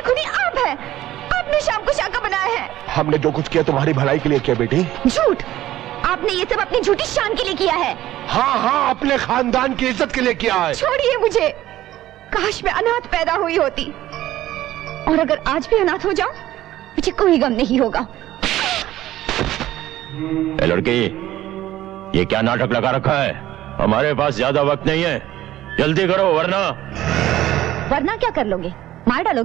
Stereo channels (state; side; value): quieter; left; 14.3 dB